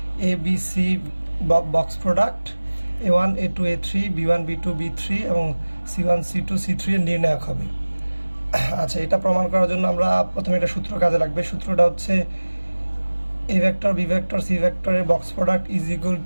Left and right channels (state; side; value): inverted; both; correlation -1.00